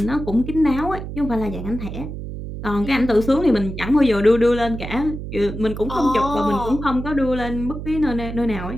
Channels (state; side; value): noise; right; hum, 8 dB below the sound